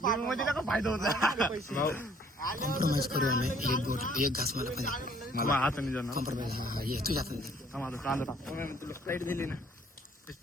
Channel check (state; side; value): normal; both; correlation 0.60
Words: होता. कॉम्प्रोमाइज करू आम्ही. एक घास मला पण हाताने जाणार. कॉम्प्रोमाइज. हा ये तुझ्या हाताने. कांदा तुला स्प्राईट दिली ना.